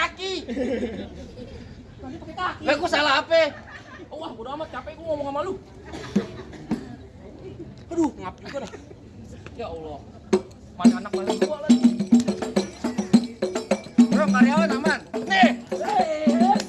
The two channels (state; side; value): identical; both; correlation 1.00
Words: Tadi pakai kaki. Lah gua salah apa? Wah, udah amat capek gua ngomong sama lu. Aduh, ngap juga dah. Ya Allah. Mana anak mana gua lagi. Bro, karyawan aman. Nih.